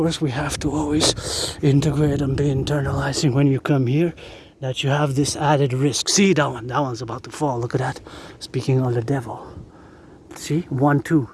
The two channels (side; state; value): both; identical; correlation 1.00